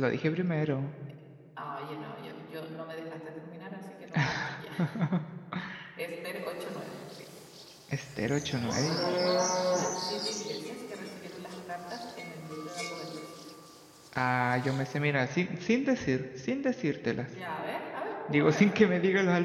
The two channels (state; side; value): identical; both; correlation 1.00